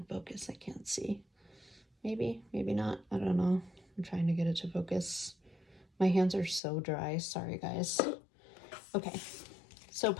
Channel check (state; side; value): drops out; right; at 6.6 s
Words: focus. I can't see. Maybe not. I don't know. I'm trying to get it to focus. My hands are so dry. Sorry, guys. Okay. So